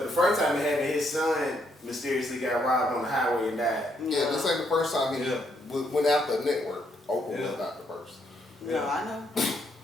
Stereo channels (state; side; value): normal; both; correlation 0.74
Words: the first time it happened, his son mysteriously got robbed on the highway and died. Yeah, this ain't the first time he went after a network. Oprah was not the first. No, I know.